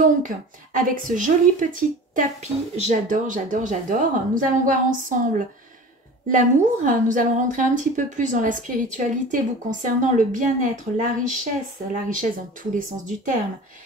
avec ce joli petit tapis, j'adore, nous allons voir ensemble l'amour. Nous allons rentrer un petit peu plus dans la spiritualité vous concernant, le bien-être, la richesse dans tous les sens du terme,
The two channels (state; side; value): normal; both; correlation 0.38